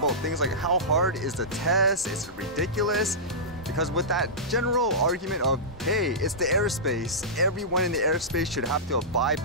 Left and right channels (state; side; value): normal; both; correlation -0.16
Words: things like how hard is the test, is it ridiculous? Because with that general argument of, hey, it's the airspace, everyone in the airspace should have to abide